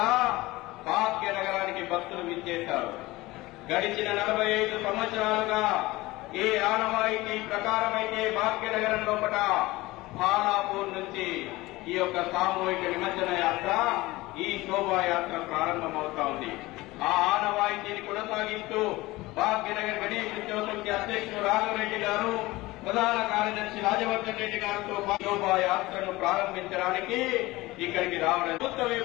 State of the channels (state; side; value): quieter; right; 19.9 dB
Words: భాగ్యనగరానికి భక్తులు విచ్చేశారు. గడిచిన 45 సంవత్సరాలుగా ఏ ఆనవాయితీ ప్రకారమైతే భాగ్యనగరం లోపల బాలాపూర్ నుంచి ఈ యొక్క సామూహిక నిమజ్జన యాత్ర, ఈ శోభాయాత్ర ప్రారంభమవుతా ఉంది. ఆ ఆనవాయితీని కొనసాగిస్తూ భాగ్యనగర్ గణేష్ ఉత్సవ సమితి అధ్యక్షుడు రాఘవరెడ్డి గారు, ప్రధాన కార్యదర్శి రాజవర్ధన్ రెడ్డి గారితో శోభాయాత్రను ప్రారంభించడానికి ఇక్కడికి రావడం. ప్రభుత్వ